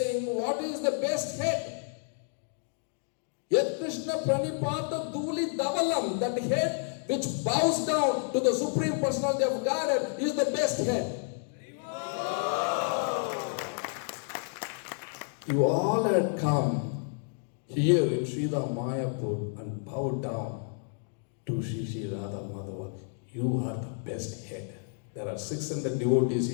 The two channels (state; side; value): silent; right; 58 dB below the other